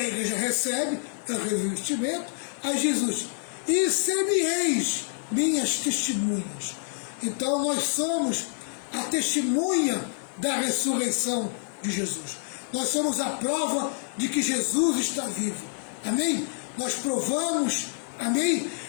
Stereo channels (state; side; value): silent; right; digital silence